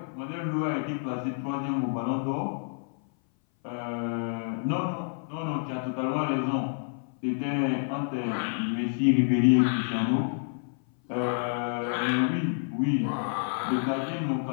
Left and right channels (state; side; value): silent; right; 57 dB below the other